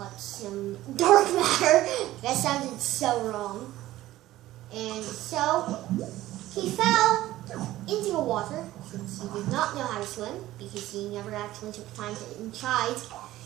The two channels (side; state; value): left; quieter; 15.5 dB